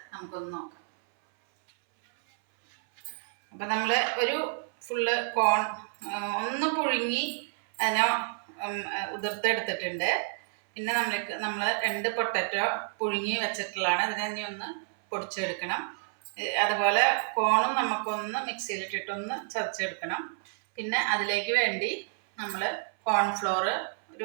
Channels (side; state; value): left; silent; 58 dB below the other